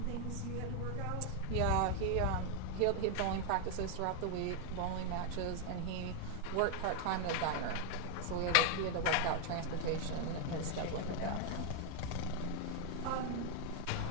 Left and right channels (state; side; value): different; both; correlation 0.00